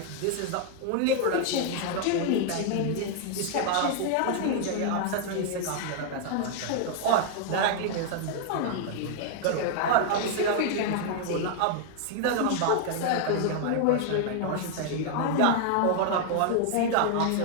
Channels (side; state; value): both; different; correlation 0.00